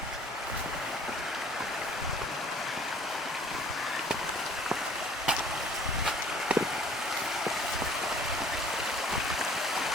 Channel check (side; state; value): both; normal; correlation 0.54